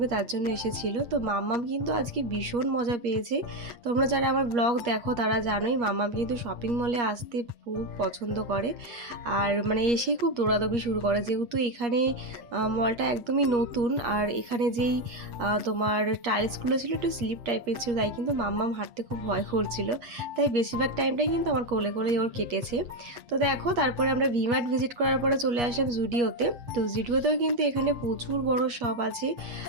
তার জন্য এসেছিল। তো মাম্মাম কিন্তু আজকে ভীষণ মজা পেয়েছে। তোমরা যারা আমার ব্লগ দেখো তারা জানোই মাম্মাম কিন্তু শপিং মলে আসতে খুব পছন্দ করে, আর মানে এসেই খুব দৌড়াদৌড়ি শুরু করে, যেহেতু এখানে মলটা একদমই নতুন। আর এখানে যেই তোমার টাইলসগুলো ছিল একটু স্লিপ টাইপের ছিল, তাই কিন্তু মাম্মাম হাঁটতে খুব ভয় করছিল। তাই বেশিরভাগ টাইমটাই কিন্তু আমার কোলে কোলেই ওর কেটেছে। তো দেখো তারপরে আমরা ভিমার্ট ভিজিট করার পরে চলে আসলাম জুডিওতে। তো জুডিওতেও কিন্তু এখানে প্রচুর বড় শপ আছে।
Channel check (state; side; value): late; left; 8.4 ms